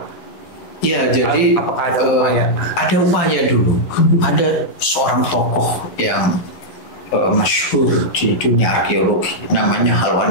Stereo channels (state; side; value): late; right; 11 ms